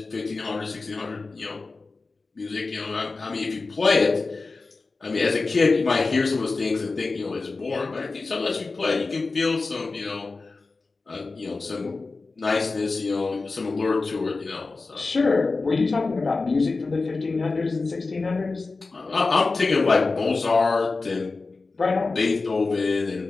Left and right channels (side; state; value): right; quieter; 3.8 dB